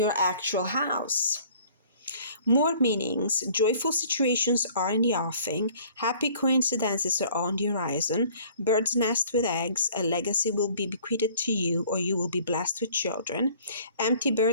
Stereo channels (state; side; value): inverted; both; correlation -0.53